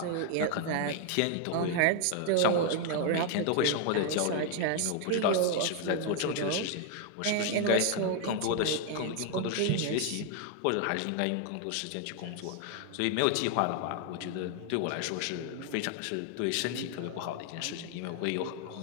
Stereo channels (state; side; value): different; both; correlation 0.00